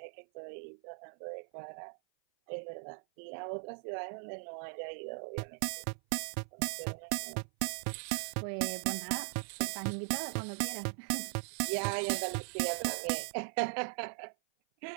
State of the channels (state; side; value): silent; left; 52 dB below the other